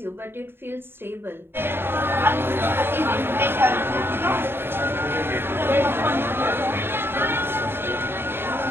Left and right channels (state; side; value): late; left; 0.11 ms